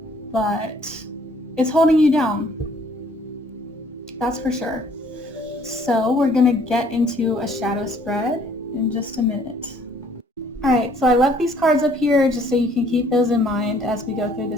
but it's holding you down. That's for sure. So we're going to get into a shadow spread in just a minute. Alright, so I left these cards up here just so you can keep those in mind as we go through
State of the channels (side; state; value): both; normal; correlation 0.61